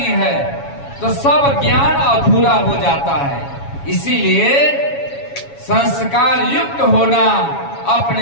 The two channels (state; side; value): late; right; 7.2 ms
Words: है तो सब ज्ञान अधूरा हो जाता है। इसीलिए संस्कार युक्त होना,